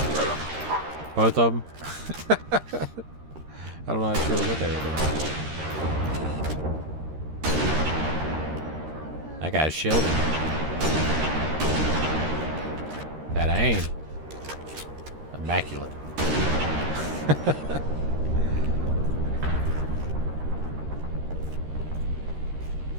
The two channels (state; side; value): late; left; 13 ms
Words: Both of them. I'm not sure what they were doing. That guy's shielded. That aim. Immaculate.